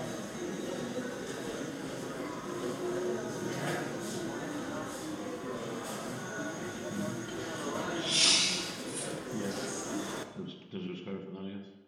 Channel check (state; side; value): identical; both; correlation 1.00